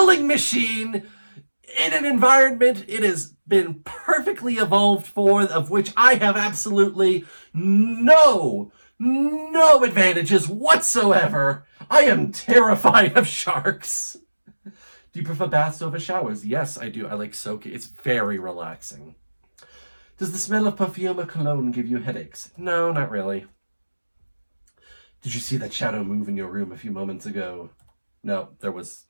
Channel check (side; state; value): both; inverted; correlation -1.00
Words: machine in an environment it has been perfectly evolved for, of which I have absolutely no advantages whatsoever. I am terrified of sharks. Do you prefer baths over showers? Yes, I do. I like soaking. It's very relaxing. Does the smell of perfume or cologne give you headaches? No, not really. Did you see that shadow move in your room a few moments ago? No, there was